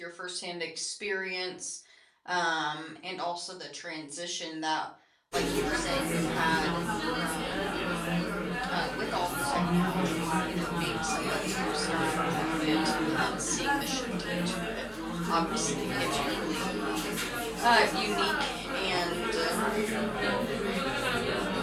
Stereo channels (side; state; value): both; identical; correlation 1.00